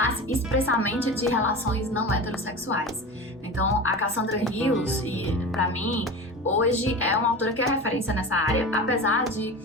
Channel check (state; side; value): normal; both; correlation 0.30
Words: expressamente de relações não heterossexuais. Então, a Cassandra Rios, para mim, hoje é uma autora que é referência nessa área, apesar de